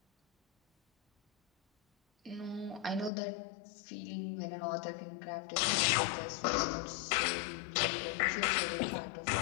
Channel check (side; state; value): right; drops out; at 3.1 s